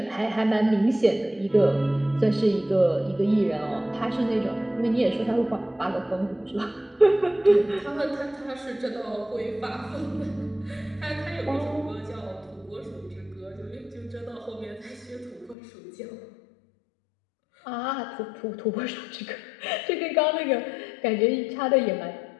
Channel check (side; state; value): right; drops out; at 15.6 s